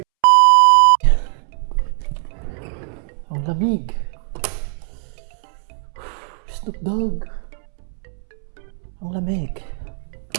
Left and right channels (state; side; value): silent; left; 65 dB below the other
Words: Ang lamig. Snoop Dogg. Ang lamig.